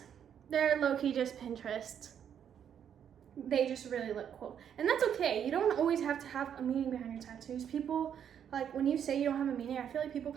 they're low-key just Pinterest. They just really look cool. And that's okay. You don't always have to have a meaning behind your tattoos. People, like when you say you don't have a meaning, I feel like people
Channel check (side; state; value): left; quieter; 8.8 dB